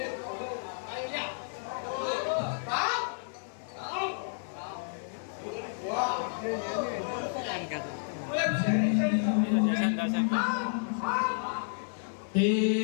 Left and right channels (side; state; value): right; silent; 56 dB below the other